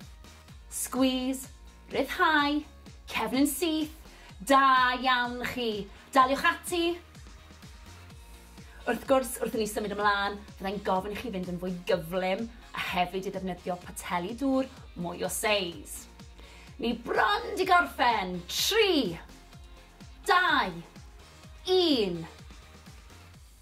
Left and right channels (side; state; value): both; identical; correlation 1.00